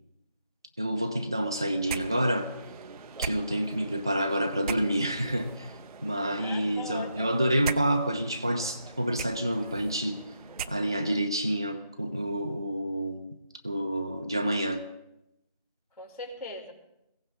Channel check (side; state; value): both; inverted; correlation -0.81